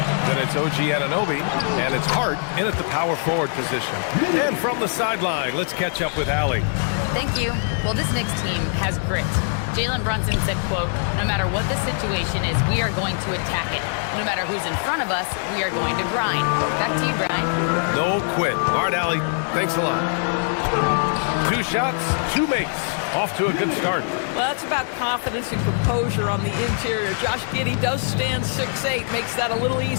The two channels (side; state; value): right; silent; 64 dB below the other